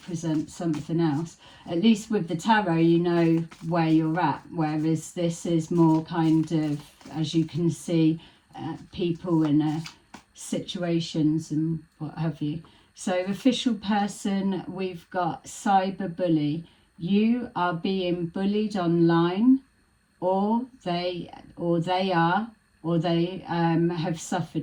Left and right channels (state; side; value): identical; both; correlation 1.00